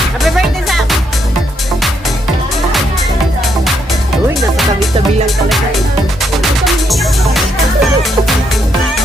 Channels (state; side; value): normal; both; correlation 0.76